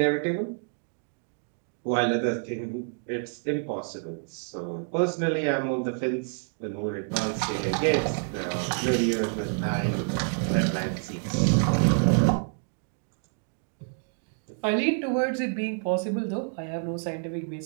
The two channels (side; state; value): left; silent; 59 dB below the other